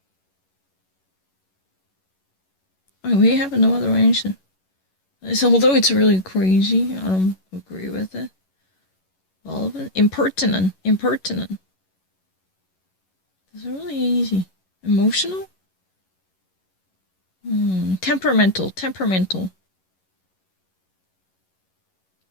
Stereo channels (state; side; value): late; right; 11 ms